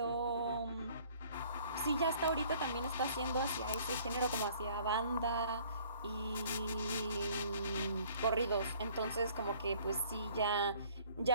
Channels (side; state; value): both; inverted; correlation -0.56